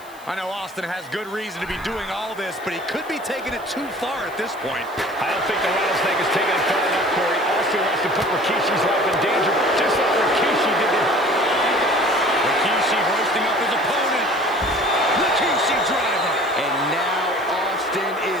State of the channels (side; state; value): left; noise; hiss, 24 dB below the sound